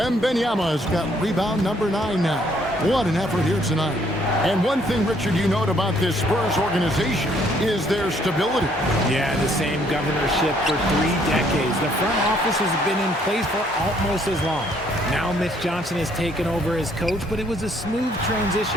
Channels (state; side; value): normal; both; correlation 0.66